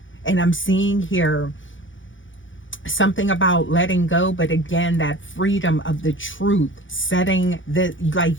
And I'm seeing here something about letting go, but again, that freedom of the truth, setting the,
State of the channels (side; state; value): right; late; 0.56 ms